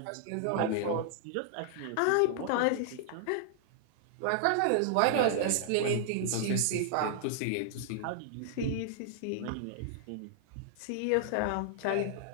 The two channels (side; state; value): both; different; correlation -0.01